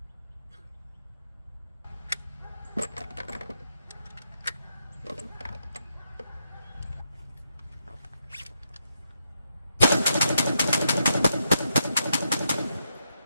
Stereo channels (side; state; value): both; inverted; correlation -0.81